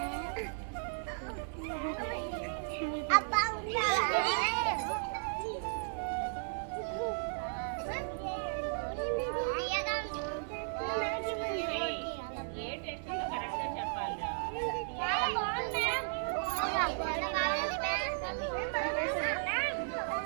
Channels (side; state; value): left; silent; digital silence